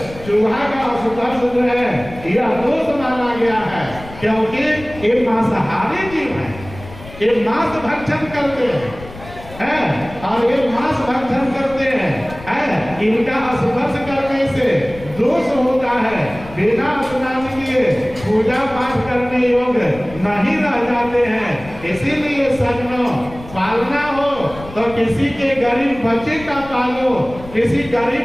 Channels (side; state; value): left; noise; rumble, 16 dB below the sound